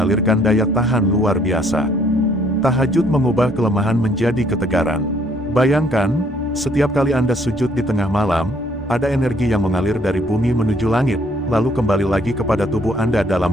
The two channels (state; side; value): normal; both; correlation 0.64